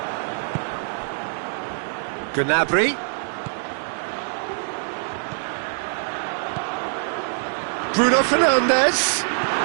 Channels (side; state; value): left; silent; 63 dB below the other